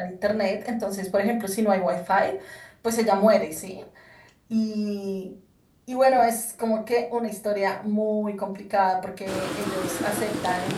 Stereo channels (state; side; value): identical; both; correlation 1.00